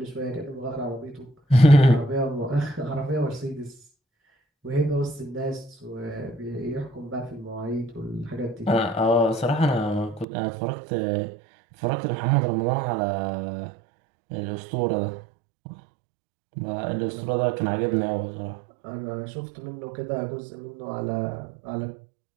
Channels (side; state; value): left; drops out; at 10.2 s